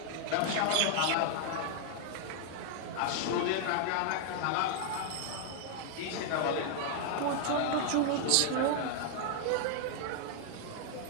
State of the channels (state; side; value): different; both; correlation 0.00